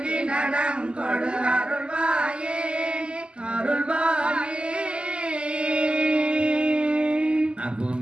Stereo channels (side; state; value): left; late; 0.051 ms